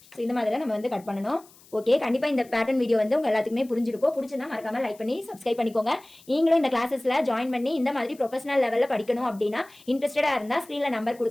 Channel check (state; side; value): noise; left; hiss, 26 dB below the sound